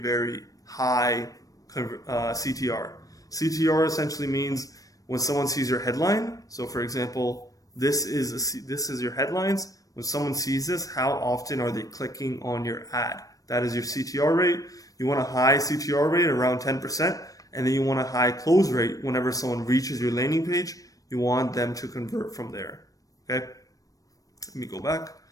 high CTR. CTR essentially means when someone sees your headline. So for example, this is your headlines. When someone sees this, how often are they clicking on your ad? That is your CTR rate. You want a high CTR rate around 10%, and then you want a high close rate whenever someone reaches your landing page. You want them to convert from there. Okay? Let me go back.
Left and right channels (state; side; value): late; right; 0.17 ms